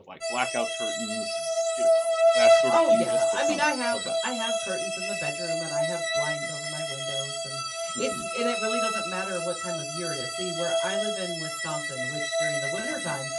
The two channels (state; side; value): identical; both; correlation 1.00